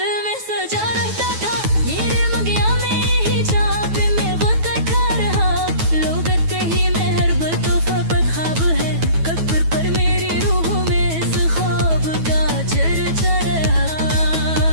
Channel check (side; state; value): left; late; 9.2 ms